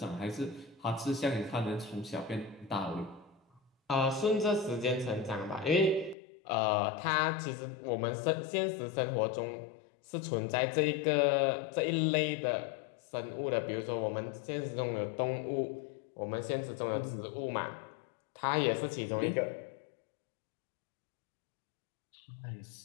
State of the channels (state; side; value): drops out; right; at 6.2 s